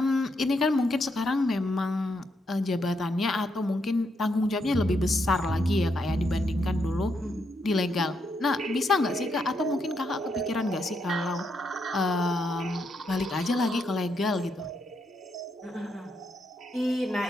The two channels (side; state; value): both; normal; correlation 0.79